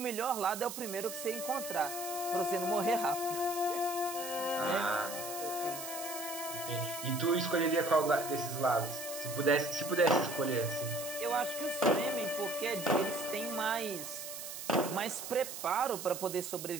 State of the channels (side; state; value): right; noise; hiss, 8 dB below the sound